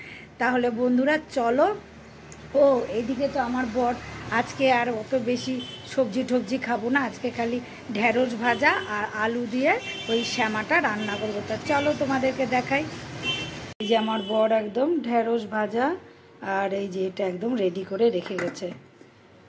তাহলে বন্ধুরা চলো। ও এইদিকে তো আমার বর আজকে আর অত বেশি সবজি টবজি খাবো না, আজকে খালি ঢেঁড়স ভাজা আর আলু দিয়ে ওই শ্যামাটা রান্না করবো। তা চলো তোমাদেরকে দেখাই। এই যে আমার বর একদম ঢেঁড়স ভাজা আর এই যে এটা একদম রেডি করে রেখে গেছে।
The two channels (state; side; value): identical; both; correlation 1.00